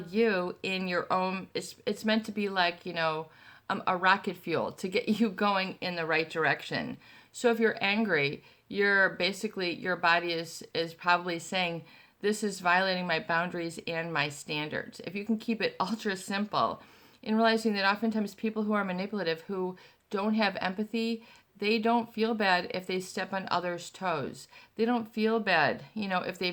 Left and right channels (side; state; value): both; identical; correlation 1.00